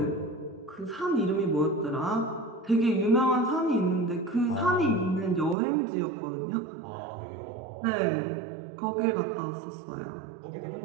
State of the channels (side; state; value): left; drops out; at 5.6 s